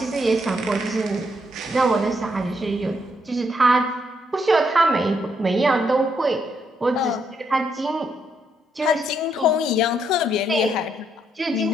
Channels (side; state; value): both; normal; correlation 0.75